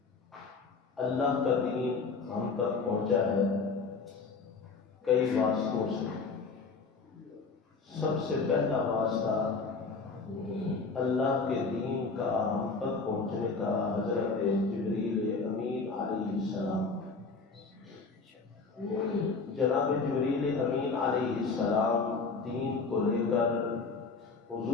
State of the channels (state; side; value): quieter; right; 4.4 dB